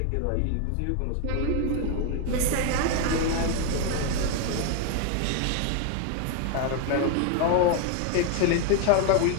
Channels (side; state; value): both; different; correlation 0.01